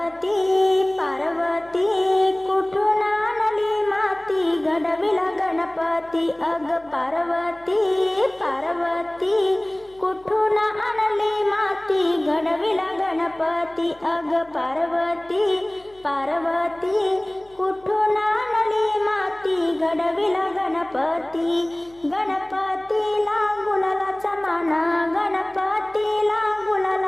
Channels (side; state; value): left; noise; hum, 29 dB below the sound